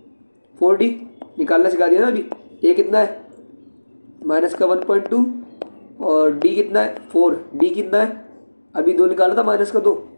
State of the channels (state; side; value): inverted; both; correlation -1.00